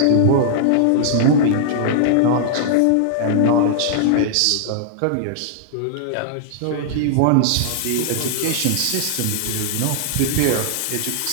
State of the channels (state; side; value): different; both; correlation -0.01